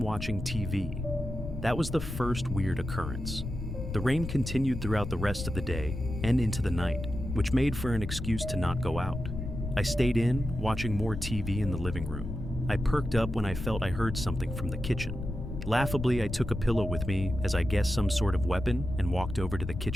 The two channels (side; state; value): left; noise; rumble, 6 dB below the sound